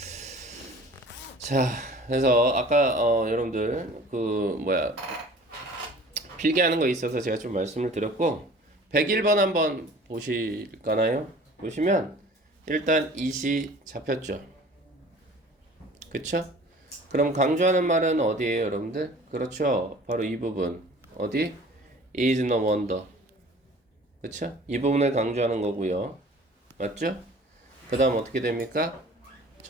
자, 그래서 아까 여러분들 필기하는 거 있어서 제가 좀 말씀을 드렸고 101번 한번 보실까나요? 보시면 일단 이시 잡혔죠. 그쵸? 그럼 강조하는 말은 어디에요, 여러분들? 그렇죠. 바로 이 부분. 어디? is no wonder. 그쵸? 이 부분을 강조하는 거고요. 맞죠? 그 다음 어떻게 됩니까?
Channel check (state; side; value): normal; both; correlation 0.47